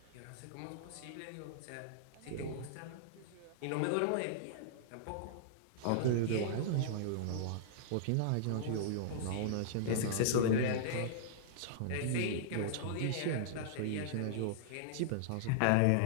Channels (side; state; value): both; different; correlation -0.02